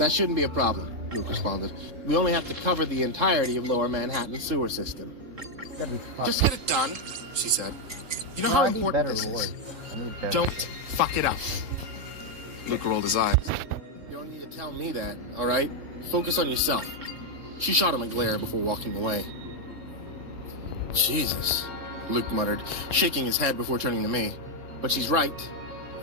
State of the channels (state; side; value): late; left; 3.6 ms